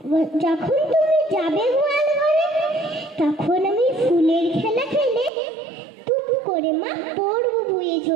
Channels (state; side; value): drops out; left; at 5.3 s